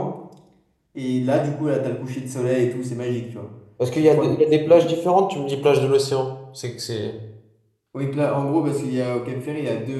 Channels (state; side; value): identical; both; correlation 1.00